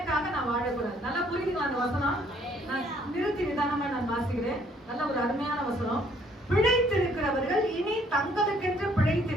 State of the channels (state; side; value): normal; both; correlation 0.64